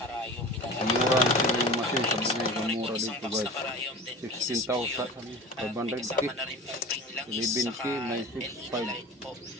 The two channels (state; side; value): normal; both; correlation 0.35